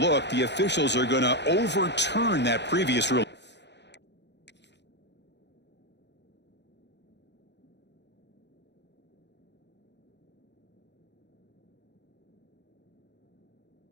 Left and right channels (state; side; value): late; right; 0.50 ms